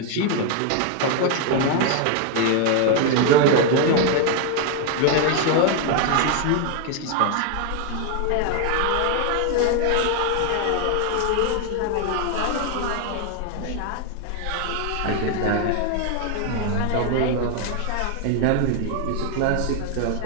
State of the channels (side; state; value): both; different; correlation 0.01